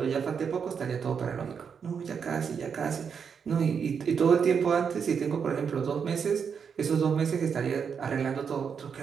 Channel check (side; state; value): left; quieter; 6.6 dB